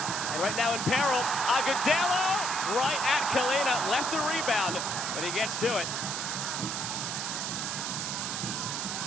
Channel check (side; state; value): right; noise; hiss, 3 dB below the sound